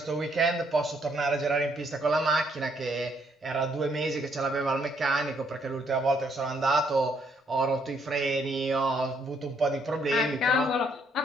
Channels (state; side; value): normal; both; correlation 0.70